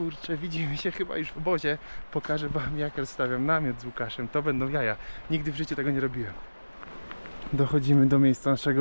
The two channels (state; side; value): inverted; both; correlation -1.00